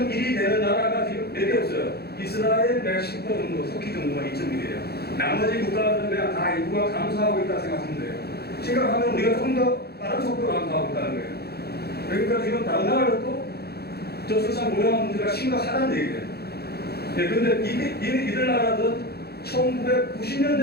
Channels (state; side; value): late; right; 0.46 ms